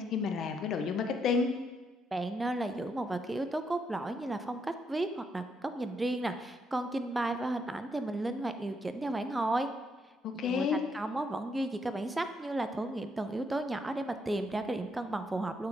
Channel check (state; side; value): normal; both; correlation 0.76